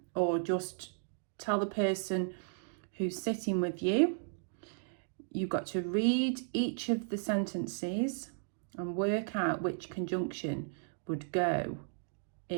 or just tell the person who's sitting with you, you've got to read each of the sentences and work out which conjunction would go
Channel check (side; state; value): left; silent; digital silence